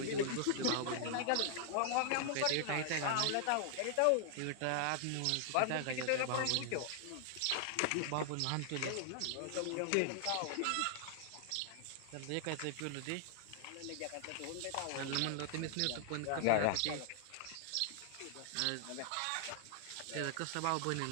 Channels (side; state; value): both; different; correlation 0.00